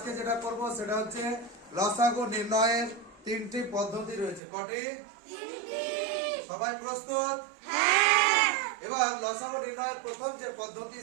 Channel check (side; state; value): left; drops out; at 4.4 s